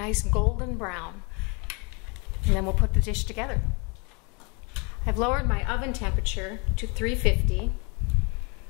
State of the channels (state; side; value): quieter; right; 31.9 dB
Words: golden brown. And then we'll put the dish together. I've lowered my oven temperature to 350.